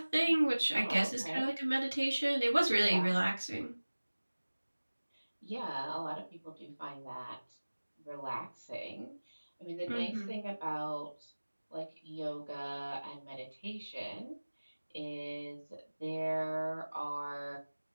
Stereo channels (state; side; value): inverted; both; correlation -1.00